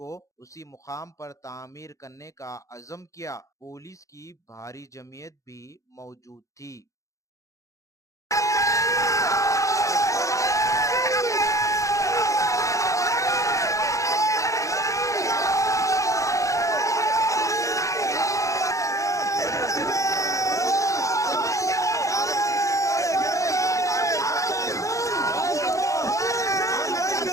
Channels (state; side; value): late; right; 0.15 ms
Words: उसी मुकाम पर तामीर करने का अज़म किया। पुलिस की भारी जमीयत भी मौजूद थी।